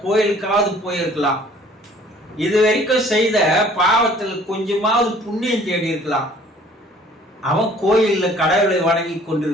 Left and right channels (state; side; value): normal; both; correlation 0.54